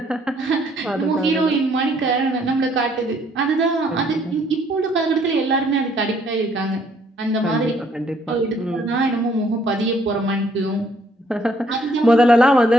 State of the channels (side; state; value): both; normal; correlation 0.65